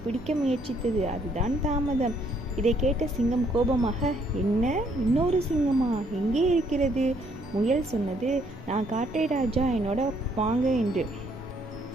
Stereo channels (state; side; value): normal; both; correlation 0.68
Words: பிடிக்க முயற்சித்தது, அதுதான் தாமதம். இதை கேட்ட சிங்கம் கோபமாக, என்ன, இன்னொரு சிங்கமா? எங்கே இருக்கிறது? முயல் சொன்னது, நான் காட்டை ராஜா, என்னோட வாங்க என்று.